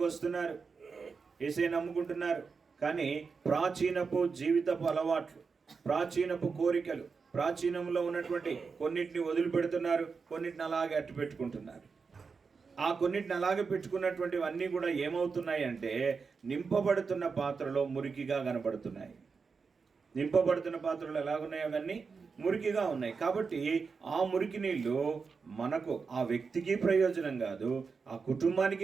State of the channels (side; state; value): left; quieter; 5.1 dB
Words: వస్తున్నారు, యేసయ్య నమ్ముకుంటున్నారు, కానీ ప్రాచీనపు జీవితపు అలవాట్లు, ప్రాచీనపు కోరికలు, ప్రాచీనంలో ఉన్నటువంటి కొన్నిటిని వదిలిపెడుతున్నారు, కొన్నిటిని అలాగే అట్టు పెట్టుకుంటున్నారు. ఆ కొన్నిటిని అలాగే పెట్టుకున్నటువంటివన్నీ కూడా ఏమవుతున్నాయి అంటే నింపబడుతున్న పాత్రలో మురికిగా కనబడుతున్నాయి. నింపబడుతున్న పాత్రలు ఎలాగున్నాయి? అవన్నీ మురికిగా ఉన్నాయి. కాబట్టి ఆ మురికి నీళ్ళు మనకు, ఆ వ్యక్తికి ప్రయోజనం కాదు, ఆ